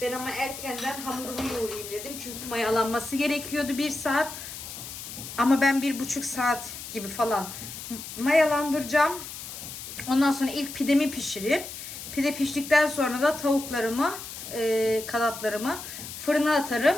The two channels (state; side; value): noise; left; hiss, 10 dB below the sound